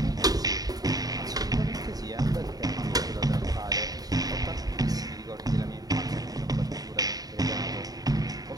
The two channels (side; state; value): left; late; 0.18 ms